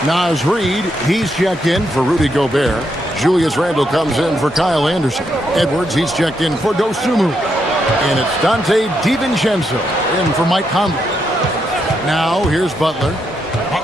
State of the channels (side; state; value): both; normal; correlation 0.80